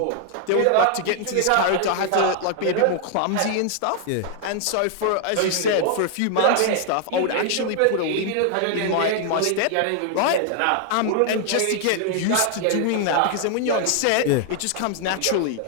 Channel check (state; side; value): different; both; correlation 0.00